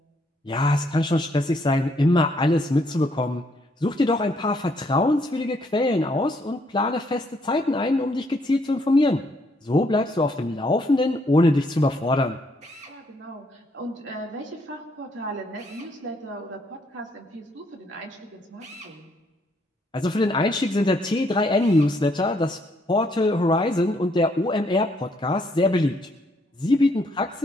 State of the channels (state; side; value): normal; both; correlation 0.70